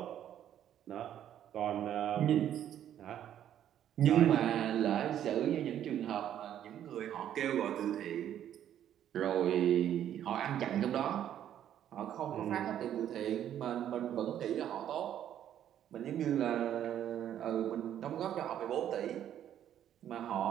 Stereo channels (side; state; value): left; quieter; 10.6 dB